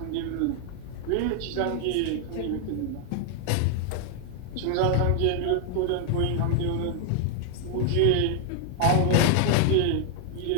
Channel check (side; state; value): both; different; correlation 0.00